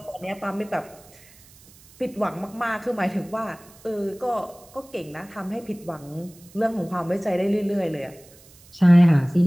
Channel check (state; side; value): noise; right; hiss, 25 dB below the sound